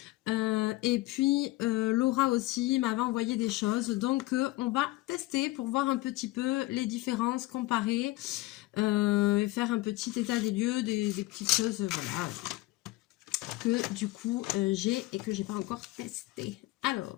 Et puis Laura aussi m'avait envoyé des choses, donc on va tester pour voir un petit peu les différences, comparer et faire un petit état des lieux, des petites choses voilà, que du coup j'ai et que j'ai pas encore testé.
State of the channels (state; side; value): quieter; right; 19.1 dB